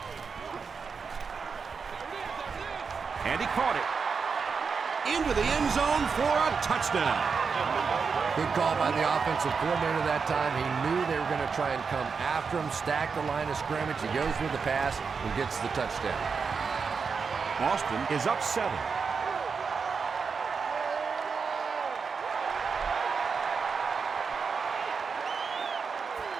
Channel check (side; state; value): left; quieter; 5.4 dB